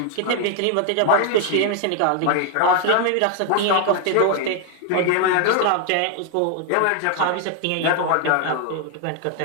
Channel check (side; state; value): both; different; correlation 0.00